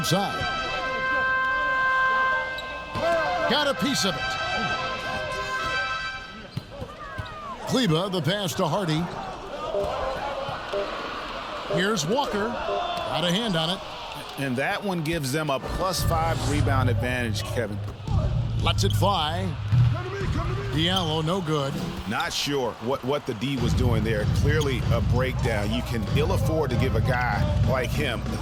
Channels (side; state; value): both; identical; correlation 1.00